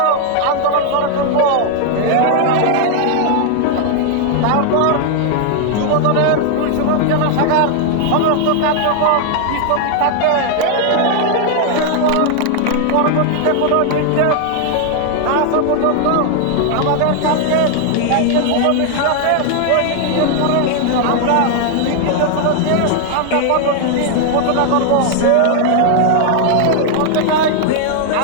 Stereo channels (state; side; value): different; both; correlation 0.00